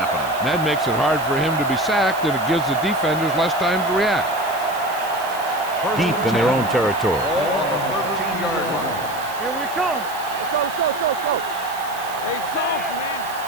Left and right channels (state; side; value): noise; right; hiss, 15 dB below the sound